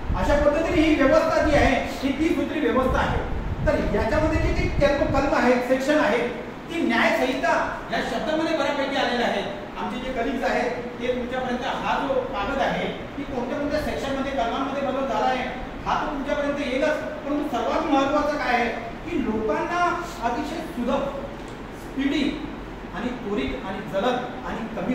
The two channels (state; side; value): identical; both; correlation 1.00